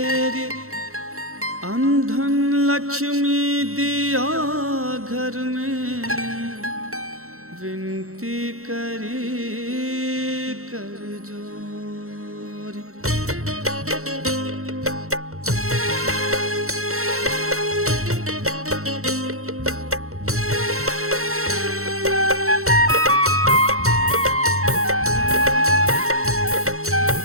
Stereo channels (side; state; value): left; late; 0.63 ms